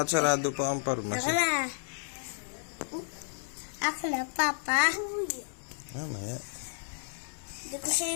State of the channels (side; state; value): right; silent; 57 dB below the other